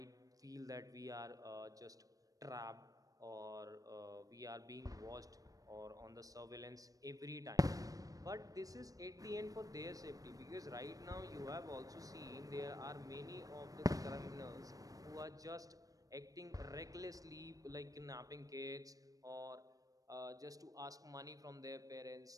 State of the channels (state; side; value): late; left; 0.17 ms